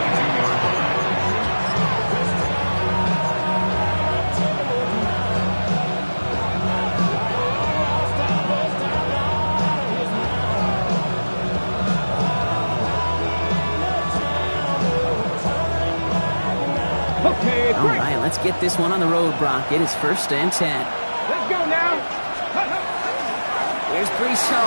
All right, let's get this one on the road, Brock. It is 1st and 10. Let's go now. Here's Brees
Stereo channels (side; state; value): both; inverted; correlation -1.00